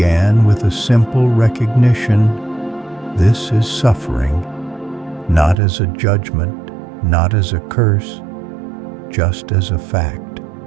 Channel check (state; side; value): drops out; left; at 5.6 s